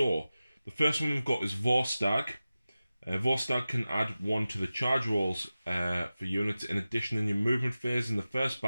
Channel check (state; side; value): inverted; both; correlation -0.95